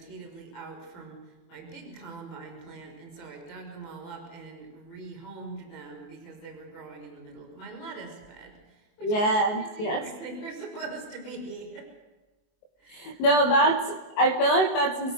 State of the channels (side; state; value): right; late; 24 ms